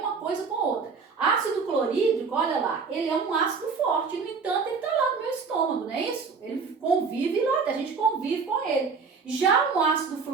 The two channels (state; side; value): quieter; left; 5.1 dB